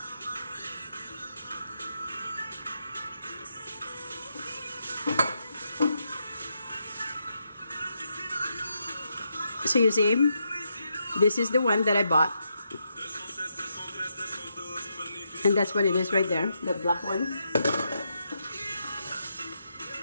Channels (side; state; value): both; inverted; correlation -0.81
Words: So you see, this is the one that I bought. And that's what it is right there, the black one.